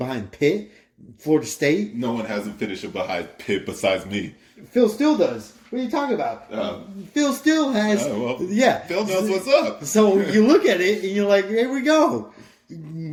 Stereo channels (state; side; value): identical; both; correlation 1.00